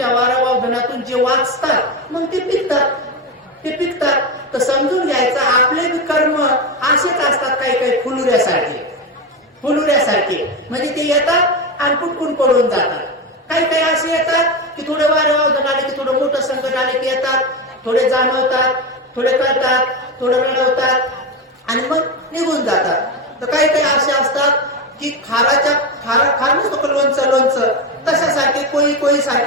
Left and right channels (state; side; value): normal; both; correlation 0.16